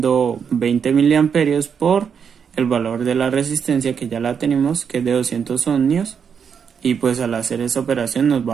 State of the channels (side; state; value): left; quieter; 7.0 dB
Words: 20 miliamperios por el valor de la resistencia, que ya la tenemos, que es de 200 ohmios, y pues al hacer esa operación nos